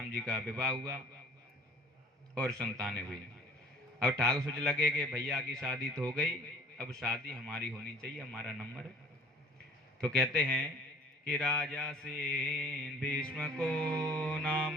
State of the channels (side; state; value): both; normal; correlation 0.50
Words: जी का विवाह हुआ और संतानें हुई। अब ठाकुर सोच लगे कि भैया की शादी तो हो गई, अब शादी हमारी होनी चाहिए, हमारा नंबर है। तो कहते हैं कि राजा सेन भीष्म को नाम